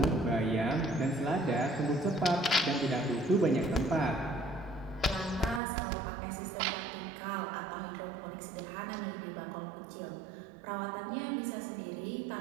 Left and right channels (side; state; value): left; drops out; at 5.6 s